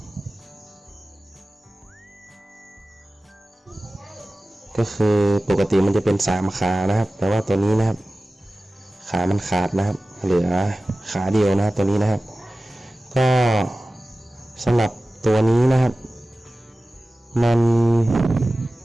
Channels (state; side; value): normal; both; correlation 0.96